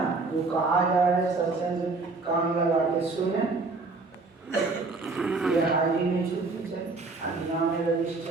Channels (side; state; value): left; quieter; 3.8 dB